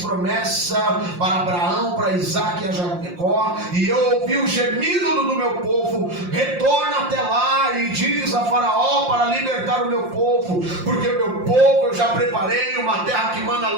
promessa para Abraão, para Isaque e a Jacó, e eu ouvi o gemido do meu povo. Retorna até lá e diz a Faraó para libertar o meu povo, porque o meu povo eu já preparei uma terra que manda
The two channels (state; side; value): late; left; 5.7 ms